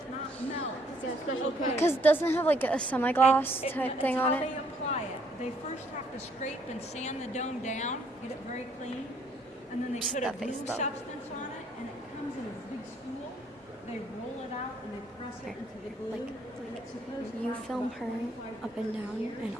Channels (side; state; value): both; normal; correlation 0.66